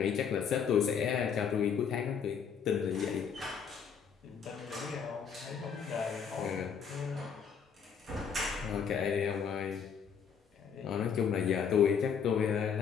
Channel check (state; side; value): quieter; right; 7.0 dB